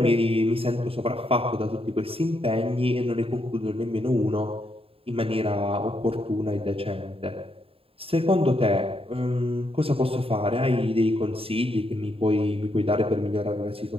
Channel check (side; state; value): left; late; 0.27 ms